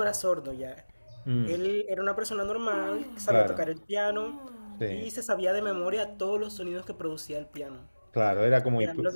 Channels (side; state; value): both; inverted; correlation -1.00